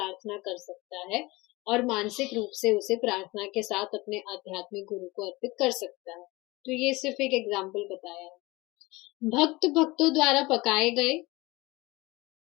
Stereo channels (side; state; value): right; quieter; 22.2 dB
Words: कर सकता है और मानसिक रूप से उसे प्रार्थना के साथ अपने आध्यात्मिक गुरु को अर्पित कर सकता है। तो ये सिर्फ एक एग्जाम्पल बताया है। भक्त भक्तों द्वारा पकाए गए,